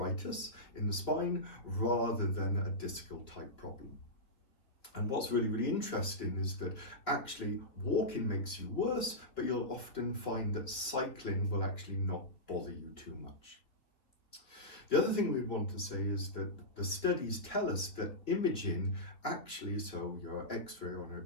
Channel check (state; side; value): late; right; 3.2 ms